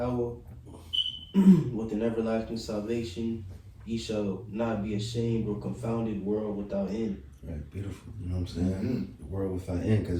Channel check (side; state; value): both; identical; correlation 1.00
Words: with an everlasting salvation. Ye shall not be ashamed or confounded, world without end. Right, beautiful. You know what I'm saying? Mm-hmm. The world without end,